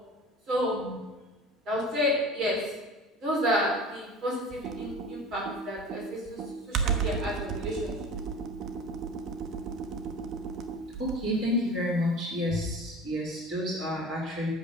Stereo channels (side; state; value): both; normal; correlation 0.37